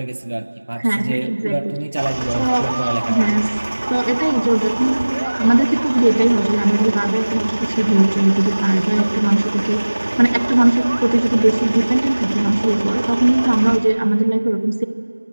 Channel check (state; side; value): inverted; both; correlation -1.00